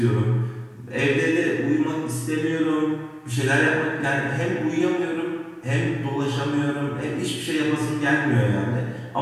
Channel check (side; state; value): both; identical; correlation 1.00